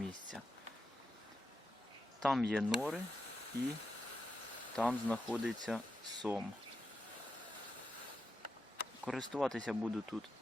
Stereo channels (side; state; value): both; normal; correlation 0.87